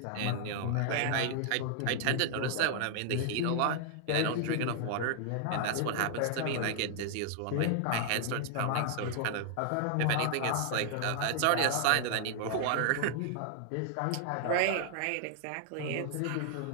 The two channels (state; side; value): different; both; correlation 0.00